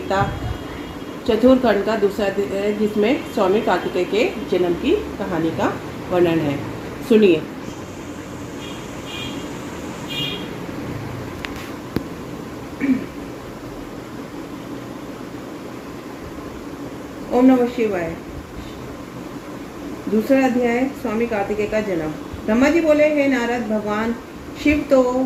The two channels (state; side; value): identical; both; correlation 1.00